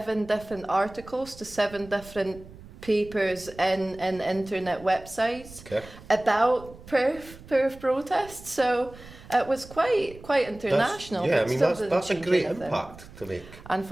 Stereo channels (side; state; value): right; noise; rumble, 19 dB below the sound